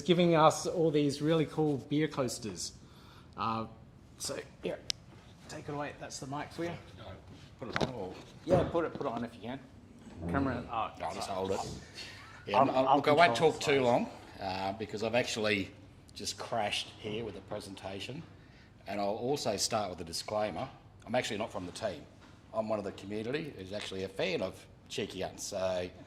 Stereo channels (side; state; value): both; identical; correlation 1.00